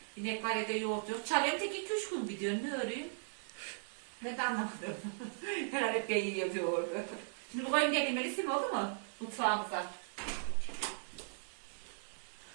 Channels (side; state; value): left; silent; digital silence